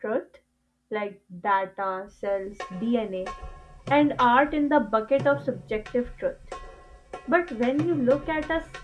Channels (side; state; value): both; identical; correlation 1.00